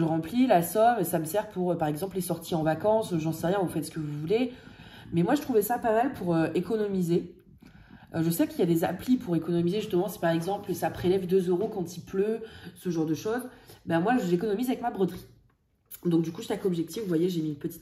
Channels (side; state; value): both; identical; correlation 1.00